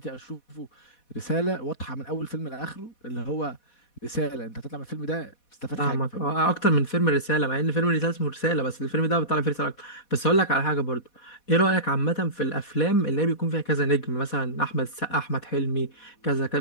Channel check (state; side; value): late; right; 4.1 ms